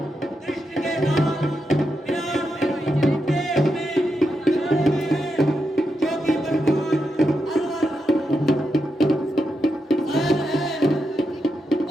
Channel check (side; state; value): both; normal; correlation 0.85